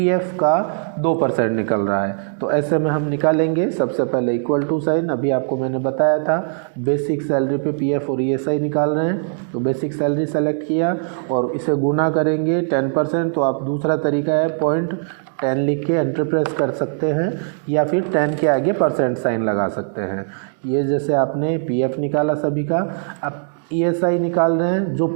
का 2% निकल रहा है। तो ऐसे में हम निकालेंगे। सबसे पहले इक्वल टू साइन, अभी आपको मैंने बताया था बेसिक सैलरी पे PF और ESI निकाल रहे हैं। तो बेसिक सैलरी सेलेक्ट किया और इसे गुना करेंगे 10%। तो आप दूसरा तरीका है 0.10 लिख के एंटर प्रेस कर सकते हैं या फिर 10 के आगे परसेंट साइन लगा सकते हैं। ये जैसे आपने PF निकाला सभी का, अब ESI निकाल रहे हैं जो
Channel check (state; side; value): silent; left; digital silence